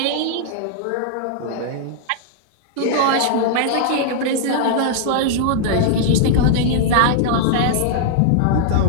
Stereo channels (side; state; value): both; different; correlation -0.01